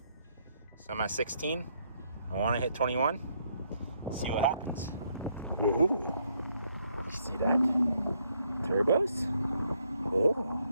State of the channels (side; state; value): both; inverted; correlation -0.72